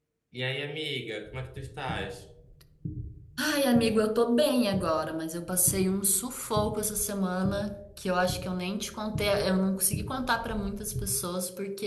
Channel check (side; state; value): both; identical; correlation 1.00